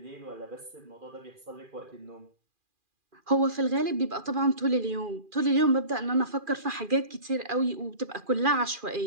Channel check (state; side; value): late; left; 2.4 ms